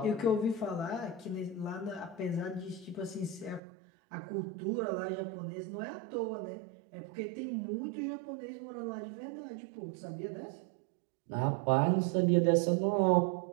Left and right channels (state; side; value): drops out; left; at 3.6 s